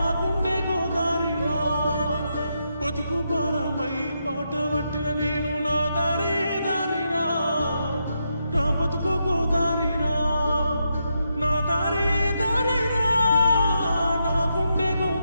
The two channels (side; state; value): both; inverted; correlation -0.82